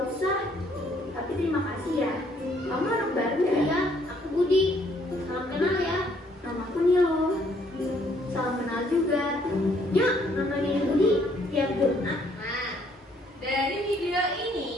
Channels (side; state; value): both; normal; correlation 0.66